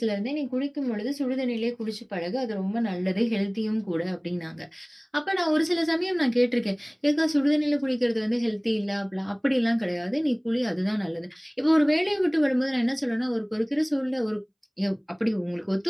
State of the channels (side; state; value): both; identical; correlation 1.00